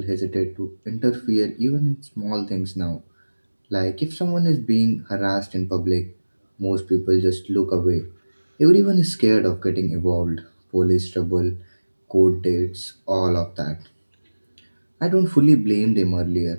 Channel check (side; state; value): both; inverted; correlation -1.00